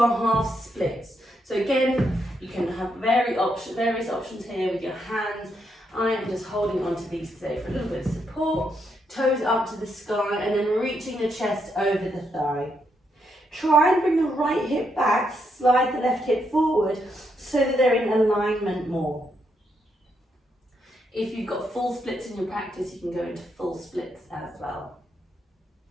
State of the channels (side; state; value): both; normal; correlation 0.79